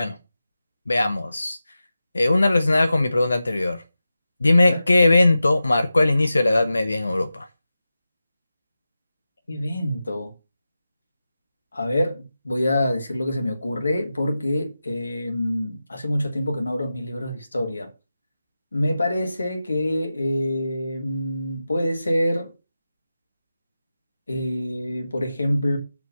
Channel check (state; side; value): inverted; both; correlation -0.93